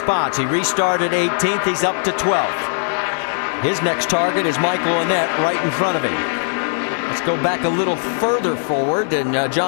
He restarted 18th. He's up to 12th. His next target is Michael Annett right in front of him. Let's go back a little further forward, and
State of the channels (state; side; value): silent; right; 64 dB below the other